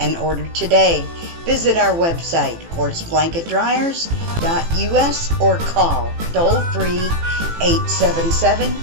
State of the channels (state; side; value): late; left; 18 ms